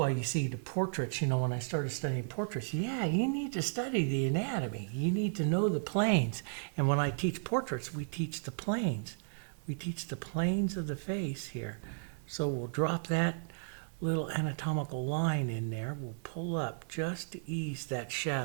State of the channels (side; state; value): left; silent; digital silence